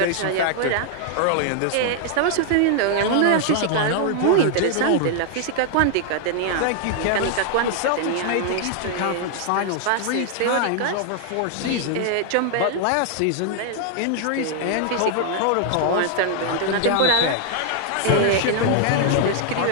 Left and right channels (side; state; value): both; different; correlation 0.00